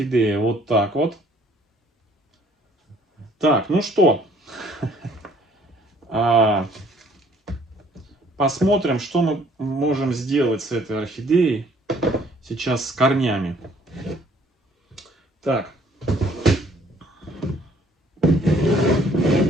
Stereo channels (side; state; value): both; normal; correlation 0.60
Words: вот так вот. Так, ну что. Посмотрим, что мы можем сделать с этой орхидеей сейчас с корнями. Так.